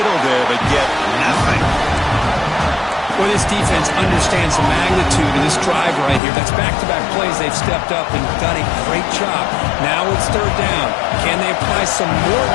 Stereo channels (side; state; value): right; drops out; at 6.2 s